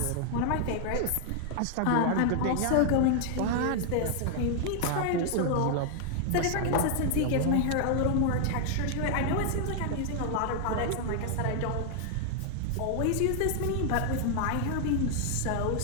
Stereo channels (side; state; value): both; different; correlation 0.00